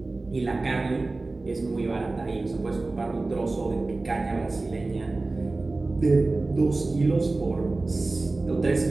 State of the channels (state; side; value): quieter; left; 3.3 dB